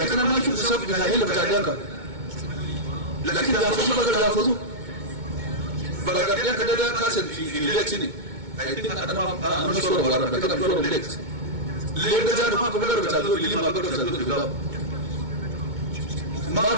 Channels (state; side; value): late; left; 2.2 ms